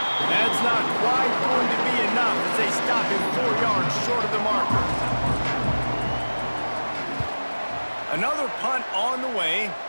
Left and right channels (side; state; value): both; inverted; correlation -1.00